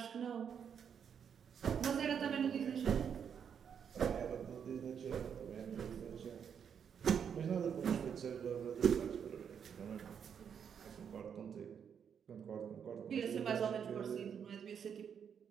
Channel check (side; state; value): left; quieter; 7.6 dB